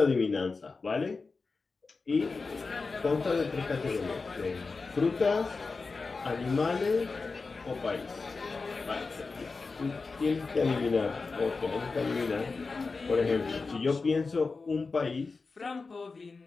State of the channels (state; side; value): quieter; right; 4.2 dB